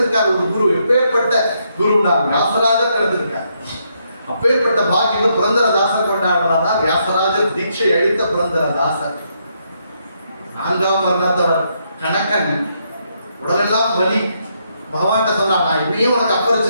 ஒரு குரு. எப்பேற்பட்ட குரு நான் வியாசராஜர் கிடைச்சிருக்கார். அப்பேற்பட்ட பாக்கியம் புரந்தரதாசர் கொண்டாடுறாங்க. வியாசராஜர் தீட்சை அளித்த புரந்தரதாசர். 4ஆம் வர்ணத்தவர் கணக்கன் உடலெல்லாம் வலி. பகவான்கிட்ட சொன்னான், நான் இப்படியும் உனக்கு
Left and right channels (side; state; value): both; inverted; correlation -0.77